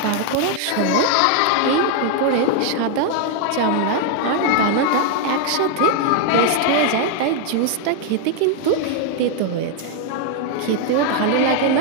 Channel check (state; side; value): different; both; correlation 0.00